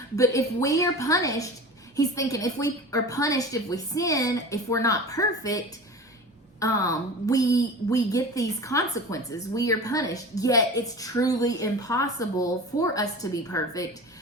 But if we are punished, he's thinking if we are punished, if we sin, if we're not perfect, we get these consequences. We are punished. Yet it's truly impossible for us to be perfect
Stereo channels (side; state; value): both; normal; correlation 0.35